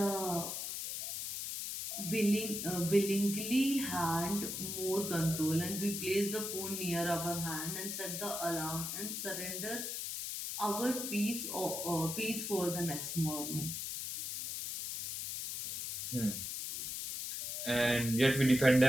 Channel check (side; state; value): left; noise; hiss, 4 dB below the sound